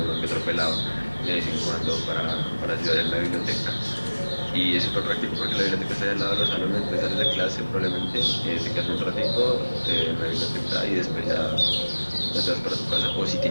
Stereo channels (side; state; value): both; inverted; correlation -1.00